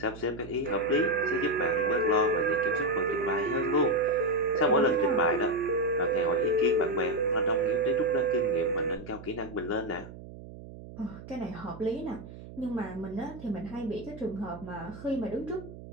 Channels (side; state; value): right; noise; hum, 15 dB below the sound